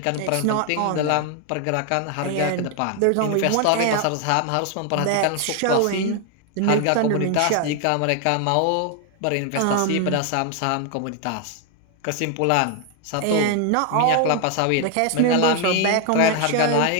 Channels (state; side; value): different; both; correlation 0.01